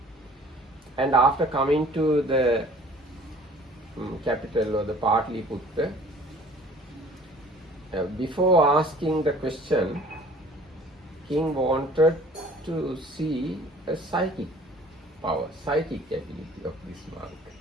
and after coming to the capital or the Patali-putta, before asking the question, king wanted to see a psychic power, psychic ability of this monk.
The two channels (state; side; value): normal; both; correlation 0.50